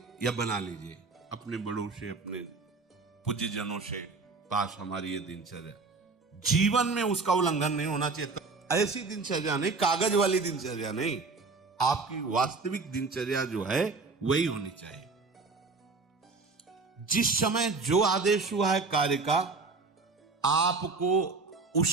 या बना लीजिए अपने बड़ों से, अपने पूज्यजनों से पास हमारी ये दिनचर्या, जीवन में उसका उल्लंघन नहीं होना चाहिए। ऐसी दिनचर्या नहीं, कागज वाली दिनचर्या नहीं, आपकी वास्तविक दिनचर्या जो है वही होनी चाहिए। जिस समय जो आदेश हुआ है कार्य का, आपको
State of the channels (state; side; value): quieter; left; 4.1 dB